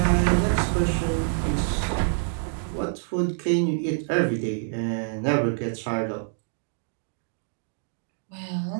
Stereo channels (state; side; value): silent; left; digital silence